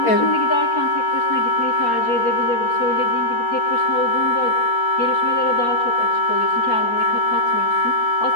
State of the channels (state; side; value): late; right; 4.3 ms